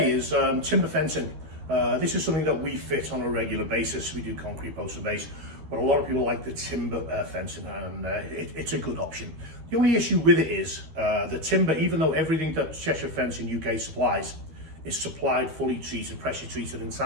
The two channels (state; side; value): late; left; 13 ms